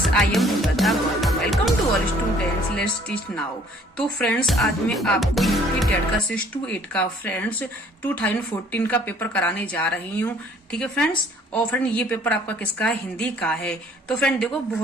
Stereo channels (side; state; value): both; normal; correlation 0.58